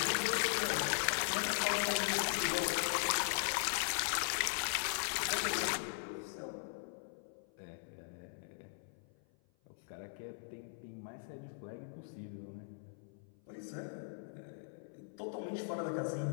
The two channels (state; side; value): silent; right; 51 dB below the other